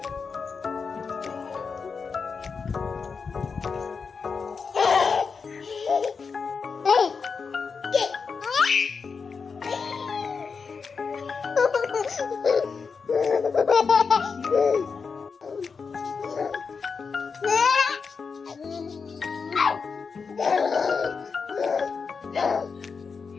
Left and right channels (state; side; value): quieter; right; 5.3 dB